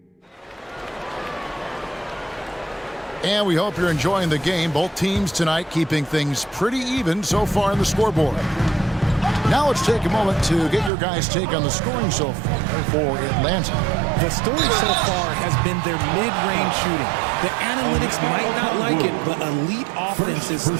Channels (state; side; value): drops out; left; at 10.9 s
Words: And we hope you're enjoying the game. Both teams tonight keeping things pretty even so far in the scoreboard. Now let's take a moment to get your guys' take on the scoring so far for Atlanta. The story so far has been their mid-range shooting. The analytics might not like it, but elite offenses